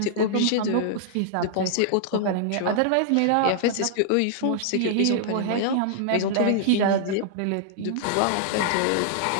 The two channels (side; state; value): both; different; correlation -0.01